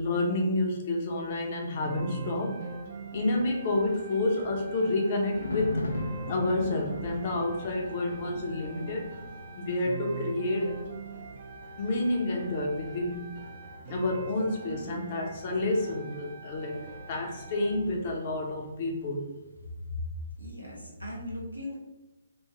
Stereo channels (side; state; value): both; inverted; correlation -0.70